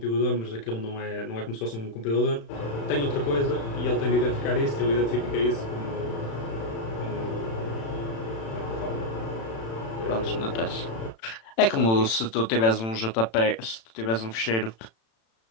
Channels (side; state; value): right; late; 36 ms